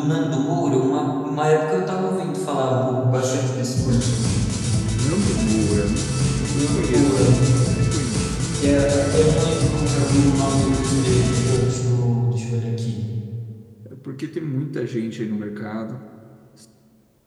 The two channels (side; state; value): both; identical; correlation 1.00